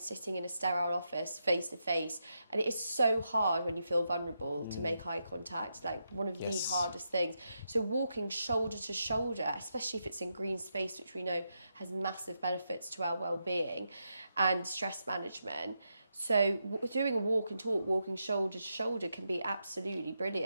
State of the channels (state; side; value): inverted; both; correlation -0.84